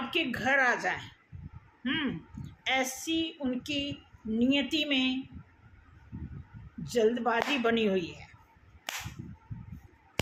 घर आ जाए। ऐसी उनकी नियति में जल्दबाजी बनी हुई है।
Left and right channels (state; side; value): identical; both; correlation 1.00